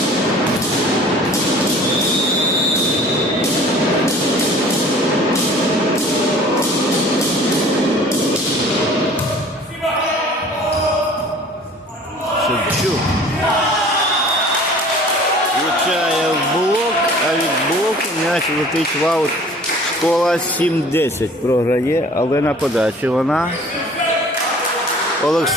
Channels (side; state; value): both; normal; correlation 0.48